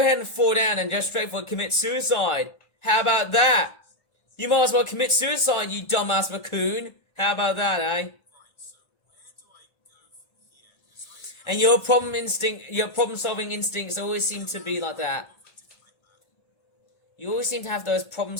and fall down and just straightforward commit suicide. How about that? You might as well commit suicide, you dumbass raccoon. How about that, eh? And your problem-solving instincts always seem to be like that. You always seem to have those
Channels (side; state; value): right; late; 1.4 ms